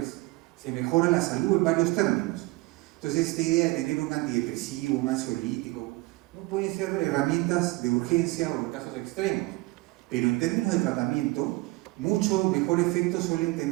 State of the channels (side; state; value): left; quieter; 22.0 dB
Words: Se mejora la salud en varios términos. Entonces, esta idea de tener un antidepresivo, un ansiolítico, no pueden ser herramientas de urgencia o en casos extremos, pero en términos de tratamiento, mucho mejor efecto suelen